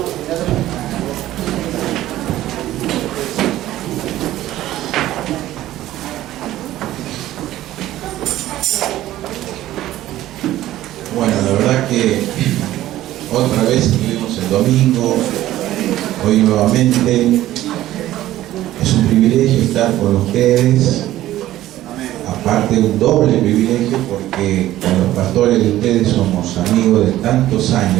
la verdad que otra vez estuvimos el domingo, hoy nuevamente. Es un privilegio estar con ustedes, aparte un doble privilegio porque con los pastores de ustedes somos amigos de tantos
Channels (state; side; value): quieter; left; 14.4 dB